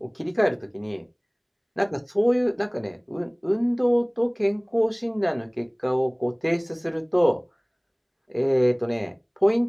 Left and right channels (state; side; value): identical; both; correlation 1.00